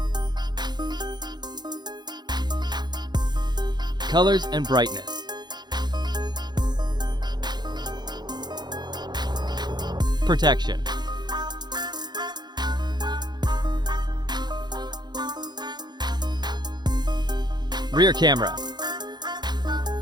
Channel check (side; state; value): left; late; 0.21 ms